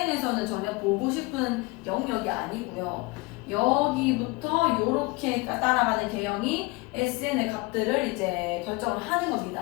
전혀 보고 싶은 영역이 아니고요. 여기부터 이렇게 따라가는 개형이 SN의 값들을 이제 결정을 하는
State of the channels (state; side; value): quieter; right; 24.2 dB